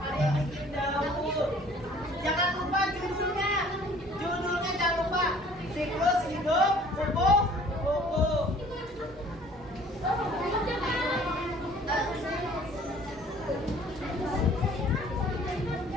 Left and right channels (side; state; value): both; normal; correlation 0.53